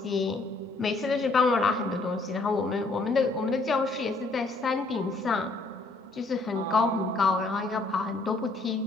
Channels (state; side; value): quieter; right; 3.3 dB